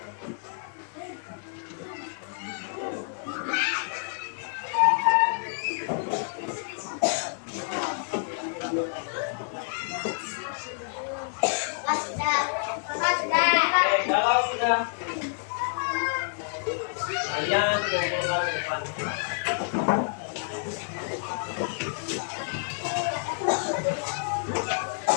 Kalau sudah kalian kumpulkan depan.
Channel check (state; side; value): silent; right; 56 dB below the other